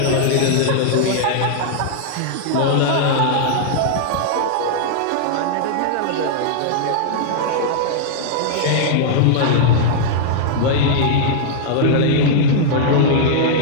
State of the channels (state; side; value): different; both; correlation -0.01